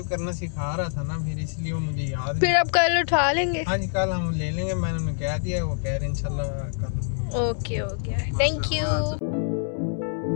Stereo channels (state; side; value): silent; right; 61 dB below the other